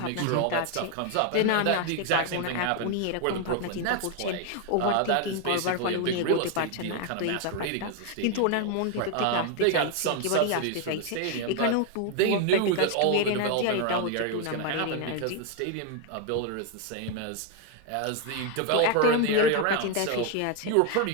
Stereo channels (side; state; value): both; different; correlation 0.01